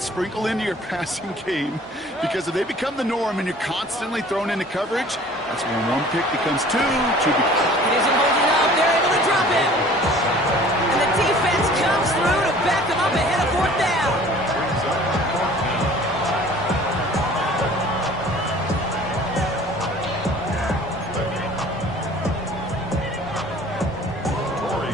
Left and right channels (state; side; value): normal; both; correlation 0.49